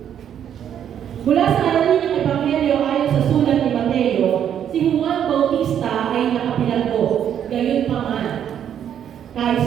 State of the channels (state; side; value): quieter; left; 9.4 dB